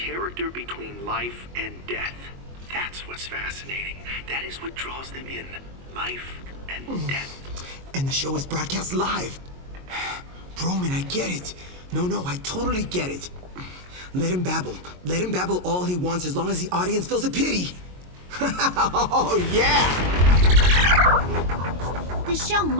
between life and death. That's what's fascinating. That is what draws them in. Life and death. And the show is broadcast live. Broman, I get it. No, I totally get it. Let him babble. Let him babble all he wants as long as the audience feels a pity. Oh, yeah! The show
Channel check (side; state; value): left; late; 22 ms